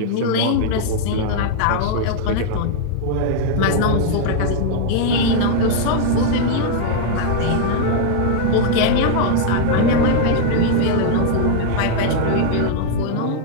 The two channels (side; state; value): both; different; correlation -0.01